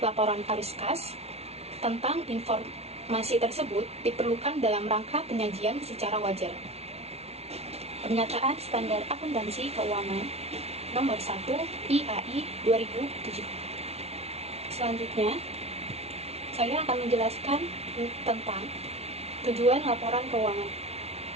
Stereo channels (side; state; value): left; late; 0.31 ms